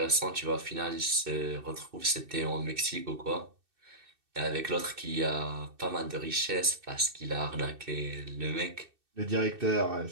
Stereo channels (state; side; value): late; left; 2.6 ms